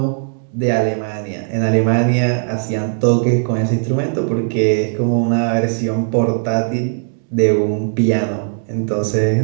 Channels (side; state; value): left; silent; digital silence